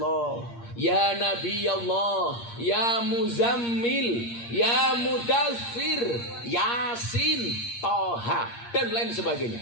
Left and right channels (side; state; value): right; late; 8.6 ms